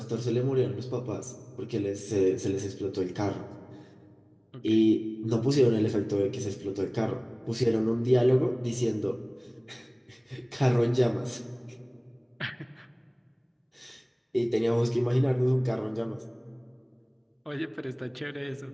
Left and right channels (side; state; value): both; identical; correlation 1.00